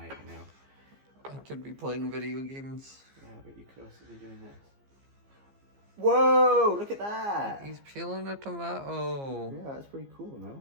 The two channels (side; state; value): left; late; 15 ms